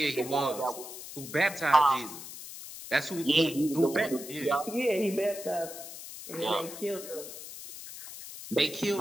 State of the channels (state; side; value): noise; left; hiss, 12 dB below the sound